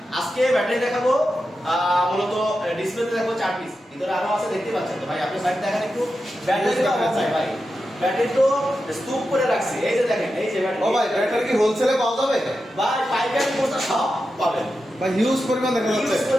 আজকে ব্যাটারি দেখাবো মূলত ডিসপ্লেতে দেখাবো 4 পিস, ভিতরে আরো আছে দেখতে পাচ্ছেন তো ভাই, আপনি সাইড দেখেন একটু ব্যাটারিটা অবস্থা ভাই, ব্যাটারি তো স্তূপ করে রাখছি, এই যে দেখেন এই যে ব্যাটারি। ও ভাই ব্যাটারি কি হোলসেলে পাওয়া যাবে? ভাই পাইকারি কোর্সটা সব পাবেন ভাই হিউজ পরিমাণ দেখা যাচ্ছে। ইউজ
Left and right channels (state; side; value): normal; both; correlation 0.90